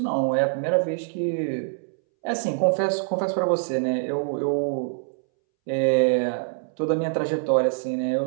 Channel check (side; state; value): left; silent; 62 dB below the other